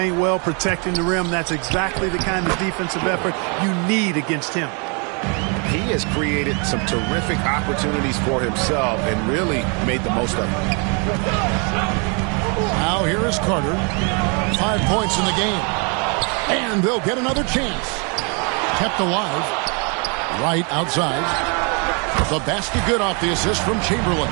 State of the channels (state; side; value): quieter; left; 35.0 dB